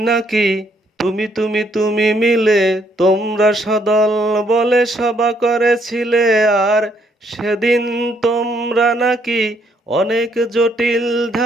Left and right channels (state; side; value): normal; both; correlation 0.70